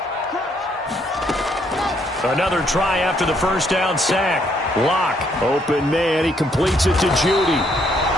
Another try after the 1st down sack. Lock, open man, he completes it to Judy.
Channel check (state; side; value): normal; both; correlation 0.70